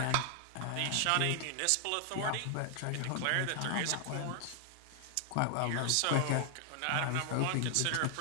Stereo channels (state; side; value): different; both; correlation 0.00